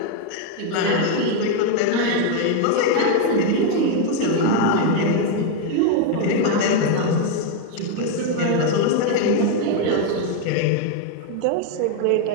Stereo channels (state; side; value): different; both; correlation 0.01